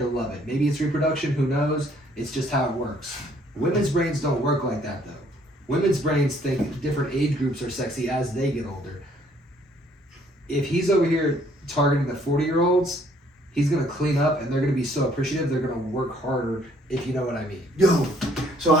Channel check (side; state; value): both; normal; correlation 0.63